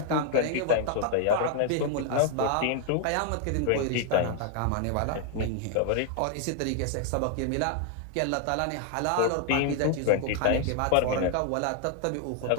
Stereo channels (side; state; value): both; different; correlation 0.00